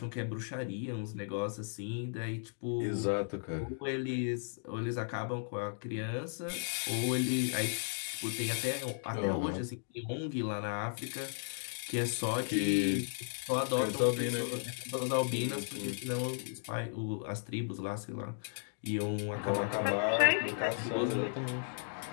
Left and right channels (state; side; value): silent; right; digital silence